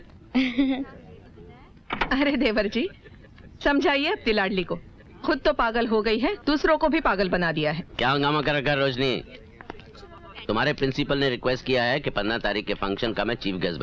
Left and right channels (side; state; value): both; identical; correlation 1.00